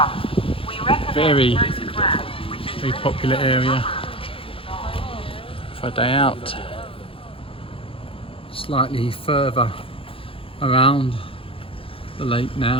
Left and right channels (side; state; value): right; late; 0.27 ms